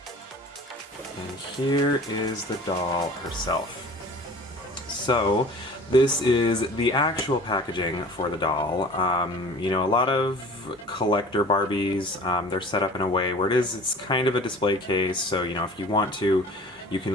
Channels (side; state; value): both; normal; correlation 0.43